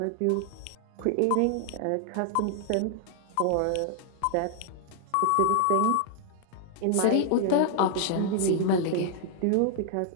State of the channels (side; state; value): both; different; correlation 0.00